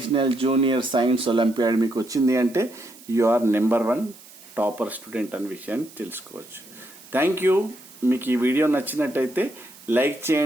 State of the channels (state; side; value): noise; right; hiss, 21 dB below the sound